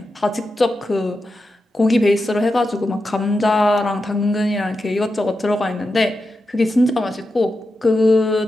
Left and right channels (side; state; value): both; normal; correlation 0.89